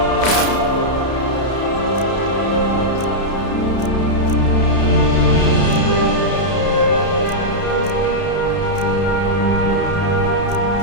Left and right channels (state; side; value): late; right; 31 ms